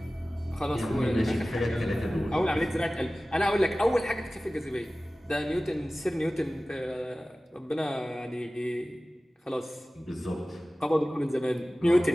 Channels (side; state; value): both; normal; correlation 0.97